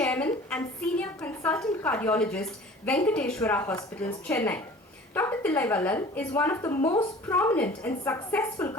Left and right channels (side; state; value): both; normal; correlation 0.45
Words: and Senior Consultant Cardiologist, Venkateshwara Hospitals, Chennai. Dr. Tillai is one of the most prominent and successful